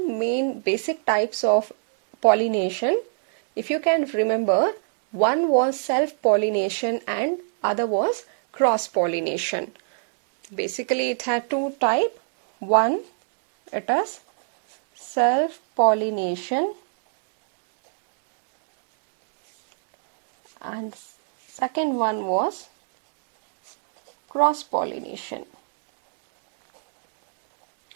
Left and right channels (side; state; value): left; silent; digital silence